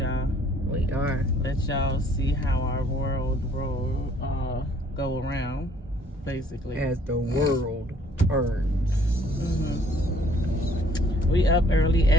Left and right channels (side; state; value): both; normal; correlation 0.60